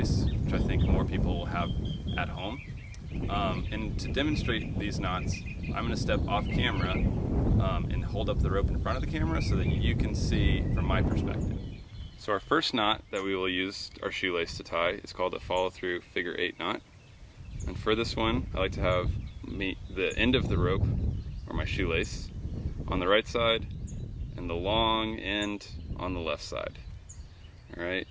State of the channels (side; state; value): both; identical; correlation 1.00